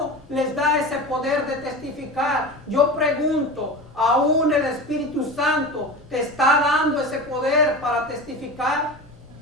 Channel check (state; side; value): normal; both; correlation 0.29